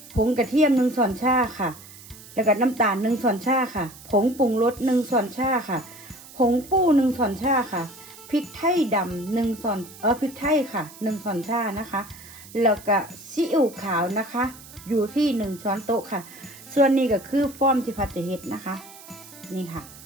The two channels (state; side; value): noise; right; hiss, 19 dB below the sound